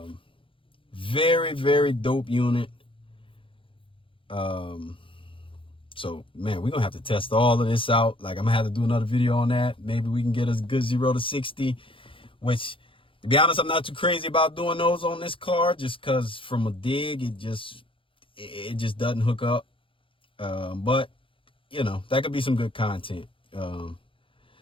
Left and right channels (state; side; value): late; right; 0.25 ms